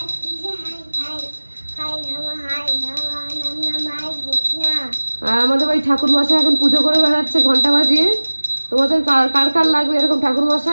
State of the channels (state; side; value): inverted; both; correlation -1.00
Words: আমাদের বাড়ি ঠাকুর মশাই এখন পুজো করে বেড়াচ্ছে ঘন্টা বাজিয়ে, তোমাদের কার কার লাগবে এরকম ঠাকুর